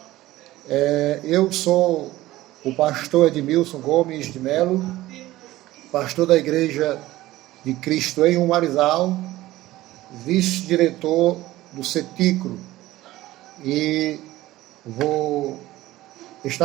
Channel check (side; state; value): left; quieter; 16.7 dB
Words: Eu sou o pastor Edmilson Gomes de Melo, pastor da Igreja de Cristo em Umarizal, vice-diretor do CETICRO, e vou